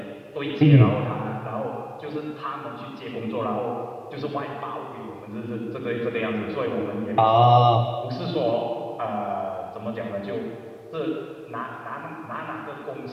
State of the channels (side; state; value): both; identical; correlation 1.00